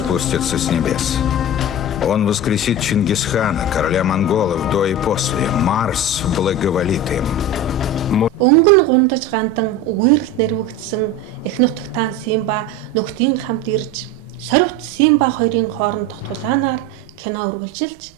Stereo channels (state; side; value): normal; both; correlation 0.27